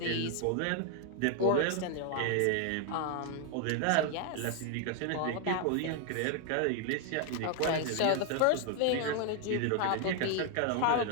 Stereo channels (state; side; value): different; both; correlation 0.00